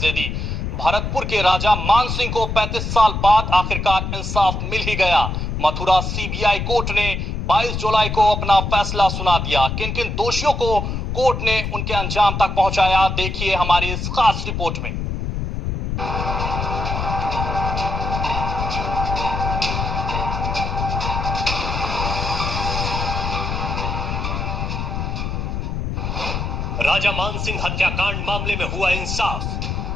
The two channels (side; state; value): left; noise; rumble, 3 dB below the sound